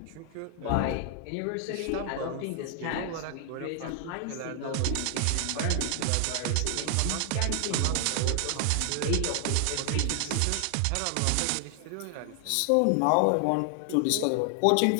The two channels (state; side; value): different; both; correlation 0.00